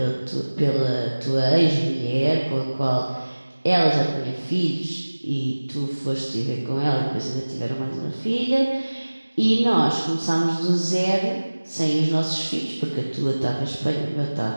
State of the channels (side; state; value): both; inverted; correlation -1.00